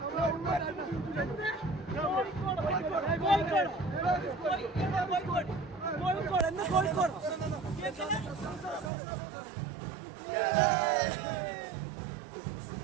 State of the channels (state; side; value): drops out; left; at 8.9 s